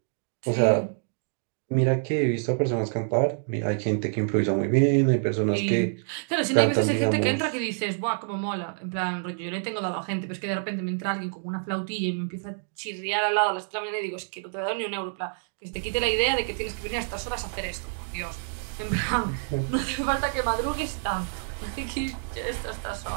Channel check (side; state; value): left; silent; digital silence